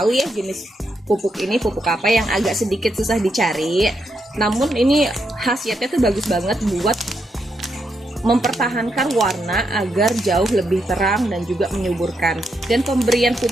ya jenis pupuk ini pupuk apa yang agak sedikit susah dicari. Namun ini khasiatnya tuh bagus banget buat mempertahankan warna agar jauh lebih terang dan juga menyuburkan. Dan pemberian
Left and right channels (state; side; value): normal; both; correlation 0.81